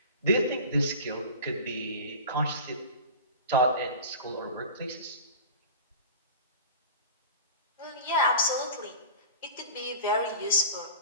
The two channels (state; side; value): inverted; both; correlation -0.35